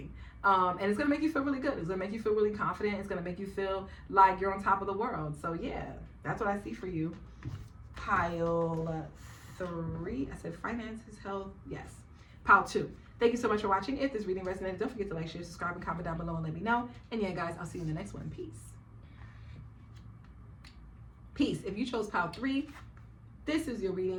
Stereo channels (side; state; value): both; identical; correlation 1.00